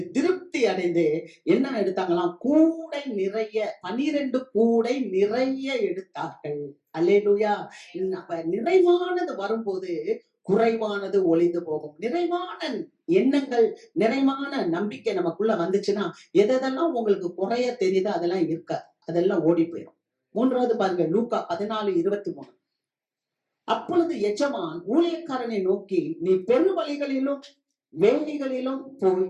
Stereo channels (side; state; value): both; identical; correlation 1.00